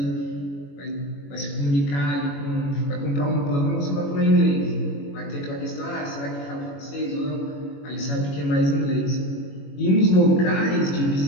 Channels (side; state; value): right; late; 21 ms